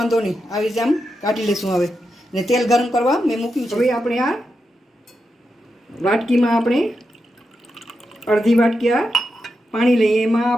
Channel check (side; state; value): both; normal; correlation 0.87